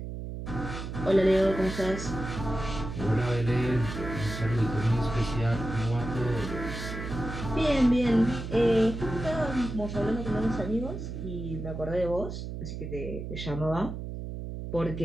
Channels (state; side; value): noise; right; hum, 7 dB below the sound